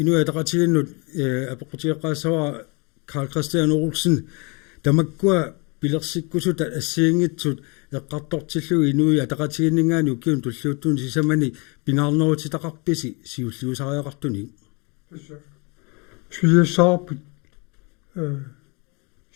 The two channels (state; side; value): quieter; right; 31.1 dB